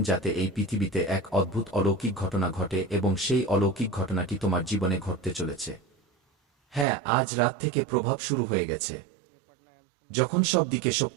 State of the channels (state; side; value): drops out; left; at 6.9 s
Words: যাতে এই পৃথিবীতে এক অদ্ভুত অলৌকিক ঘটনা ঘটে এবং সেই অলৌকিক ঘটনাটি তোমার জীবনে ঘটতে চলেছে। হ্যাঁ, আজ রাত থেকে প্রভাব শুরু হয়ে গেছে। যখন সব দিকে